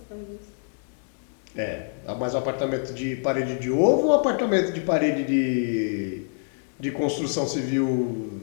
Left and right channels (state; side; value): silent; right; digital silence